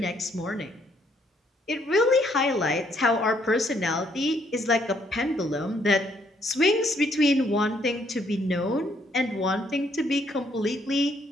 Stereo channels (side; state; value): both; normal; correlation 0.69